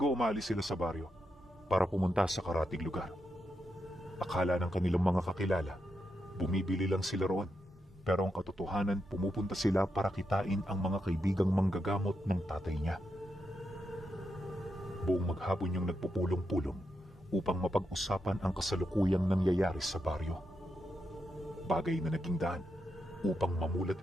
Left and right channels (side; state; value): both; normal; correlation 0.84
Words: umalis sila sa baryo para pumunta sa karatig lugar. Akala ng kanilang mga kakilala, bumibili lang sila roon, pero ang katotohanan pumupunta sila para kitain ang mga kaibigang manggagamot ng tatay niya. Buong maghapon yung nagpupulong-pulong upang mapag-usapan ang kasalukuyang nangyayari sa baryo. Bagay na naging daan upang mamulat